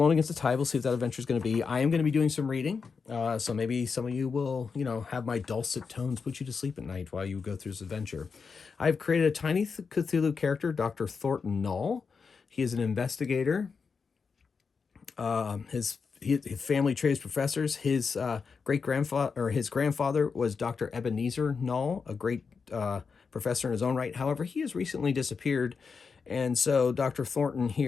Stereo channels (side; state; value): right; quieter; 5.4 dB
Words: Against the Tide. We'll see what that adventure is going to be. I am going to be doing some reading. So maybe some of you will, have my dulcet tones put you to sleep at night while you go through this adventure. I've created a Tiny Cthulhu character, Dr. Thornton Null. He is an investigator. His family tree is professors. His grandfather was Dr. Ebenezer Null, a great professor in his own right. However, he has recently disappeared. And so Dr. Thornton